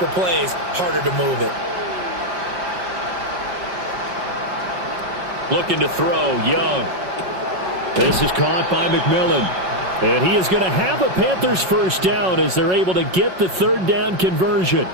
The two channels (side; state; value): left; late; 5.4 ms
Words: plays, harder to move it. Looking to throw, Young. This is caught by McMillan. And he is going to have a Panthers 1st down as they're able to get the 3rd down conversion.